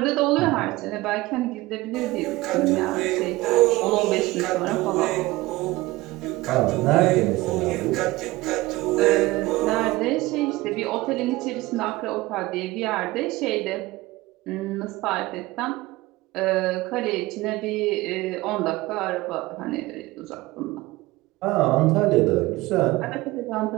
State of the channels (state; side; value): quieter; left; 19.6 dB